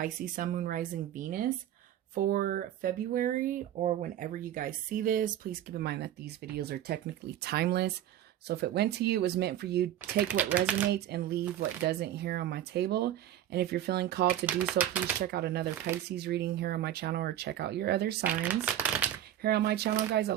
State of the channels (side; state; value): left; quieter; 11.7 dB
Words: Sun, Moon, Rising, Venus for February, or whenever you guys see this. Please keep in mind that these videos are technically timeless, so if it went to you, it was meant for you. Take what resonates and leave what doesn't here on my table. And if you're feeling called to do so, please check out another Pisces reading here on my channel, or check out your other signs. Here on my channel, guys, I